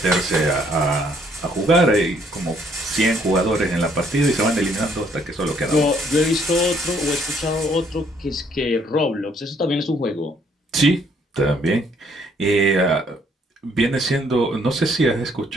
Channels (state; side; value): normal; both; correlation 0.66